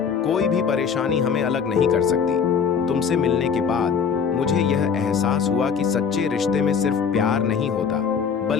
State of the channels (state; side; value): quieter; right; 6.6 dB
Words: कोई भी परेशानी हमें अलग नहीं कर सकती। तुमसे मिलने के बाद मुझे यह एहसास हुआ कि सच्चे रिश्ते में सिर्फ प्यार नहीं होता,